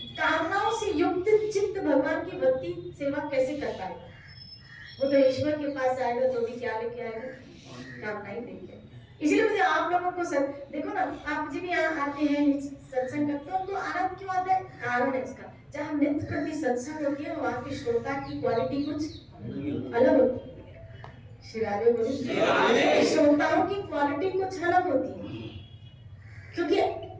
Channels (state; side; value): identical; both; correlation 1.00